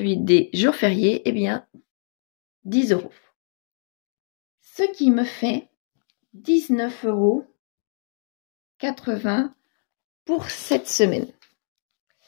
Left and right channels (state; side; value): silent; right; digital silence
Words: des jours fériés, 10 €. Ce qui me fait 19,80 € pour cette semaine.